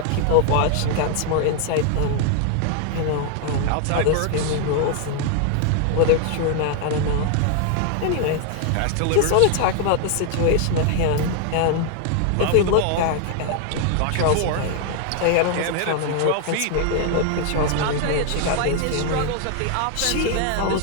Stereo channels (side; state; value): both; different; correlation 0.00